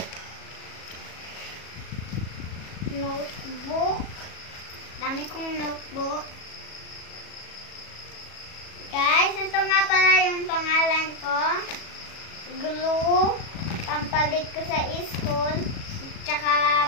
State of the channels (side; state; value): right; late; 37 ms